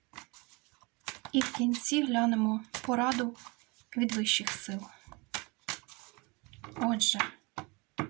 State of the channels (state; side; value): quieter; left; 27.6 dB